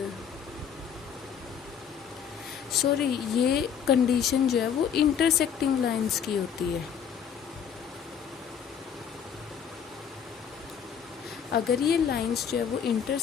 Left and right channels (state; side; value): quieter; right; 7.8 dB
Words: sorry, ये कंडीशन जो है वो इंटरसेक्टिंग लाइंस की होती है। अगर ये लाइंस जो है वो